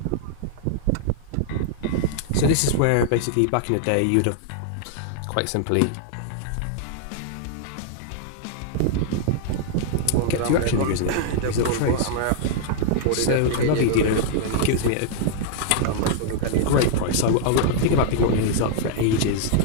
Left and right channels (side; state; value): both; different; correlation -0.01